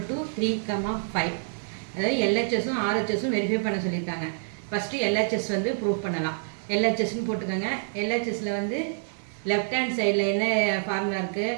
to 3,5. அதாவது LHSும் RHSும் verify பண்ண சொல்லியிருக்காங்க. ஃபஸ்ட்டு LHS வந்து ப்ரூவ் பண்ணலாம். LHSன்னு போட்டுக்கோங்க. LHSல வந்து லெஃப்ட் ஹேண்ட் சைடில் என்ன ஃபார்முலா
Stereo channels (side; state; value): left; silent; digital silence